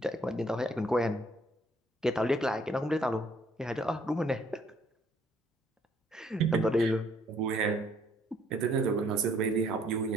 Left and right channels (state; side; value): normal; both; correlation 0.64